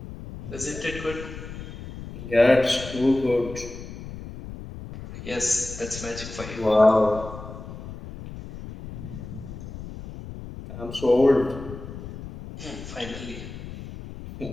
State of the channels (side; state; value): left; noise; rumble, 11 dB below the sound